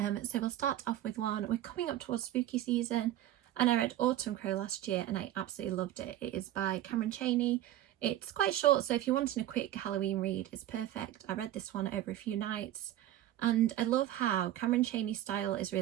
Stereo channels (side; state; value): left; quieter; 13.2 dB